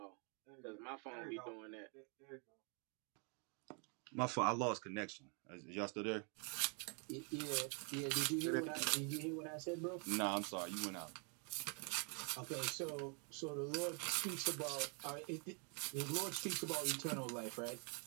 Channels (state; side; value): quieter; left; 37.7 dB